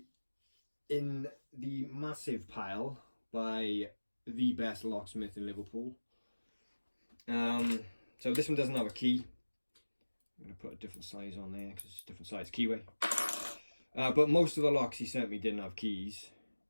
in the massive pile by the best locksmith in Liverpool. So this one doesn't have a key. I'm going to put a different size on there because it's a different size keyway. But most of the locks he sent me didn't have keys.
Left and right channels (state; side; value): inverted; both; correlation -1.00